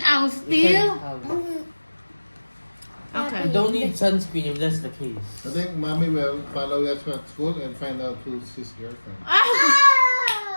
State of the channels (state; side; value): inverted; both; correlation -1.00